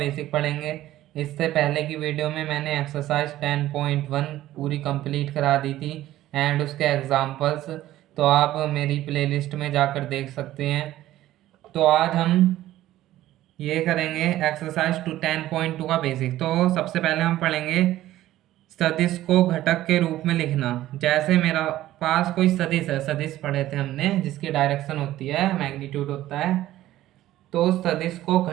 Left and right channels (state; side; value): quieter; left; 14.5 dB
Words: पढ़ेंगे। इससे पहले की वीडियो में मैंने एक्सरसाइज 10.1 पूरी कंप्लीट करा दी थी एंड उसके एग्जाम्पल्स। तो आप मेरी प्लेलिस्ट में जाकर देख सकते हैं। तो आज हम ये करेंगे एक्सरसाइज 10.2 का बेसिक। तो सबसे पहले हम पढ़ेंगे सदिश को घटक के रूप में लिखना। जैसे मेरा पास कोई सदिश है, सदिश पढ़े थे हमने, जिसकी डायरेक्शन होती है, मैग्नीट्यूड होता है। तो सदिश को